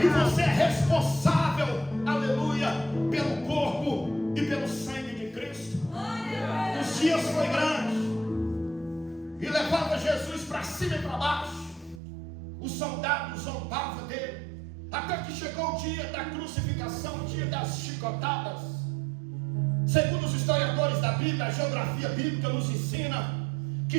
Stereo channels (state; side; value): drops out; left; at 12.0 s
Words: você é responsável, aleluia, pelo corpo e pelo sangue de Cristo. Os dias foi grande e levava Jesus para cima e para baixo. Os soldados zombavam dele, até que chegou o dia da crucificação, o dia das chicotadas. Segundo os historiadores da Bíblia, a geografia bíblica nos ensina